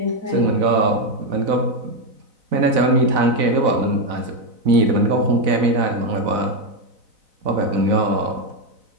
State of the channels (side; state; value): left; late; 4.0 ms